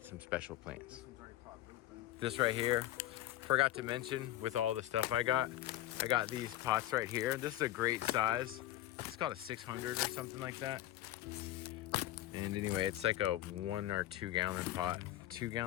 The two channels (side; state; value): right; quieter; 14.1 dB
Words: some special plants. This right here, forgot to mention with all the stuff I got these pots right here. This is a great size. It's called a 600 or something like that. And anyway, it's like a 1 or 2 gallon pot. 2